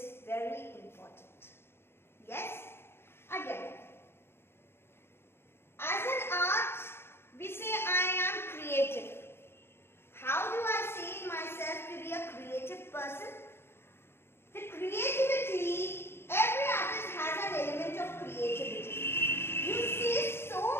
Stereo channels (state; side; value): late; right; 0.11 ms